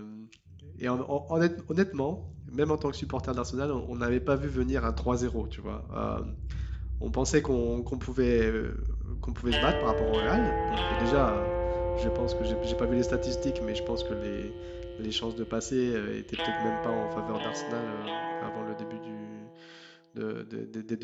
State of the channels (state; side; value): identical; both; correlation 1.00